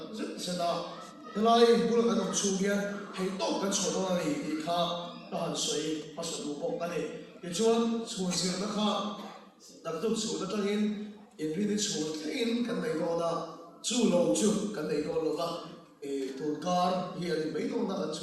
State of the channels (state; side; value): identical; both; correlation 1.00